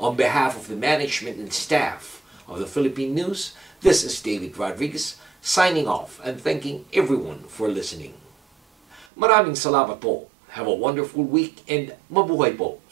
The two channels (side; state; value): left; drops out; at 9.1 s